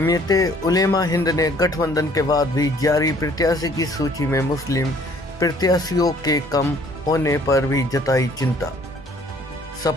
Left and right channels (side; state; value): both; normal; correlation 0.58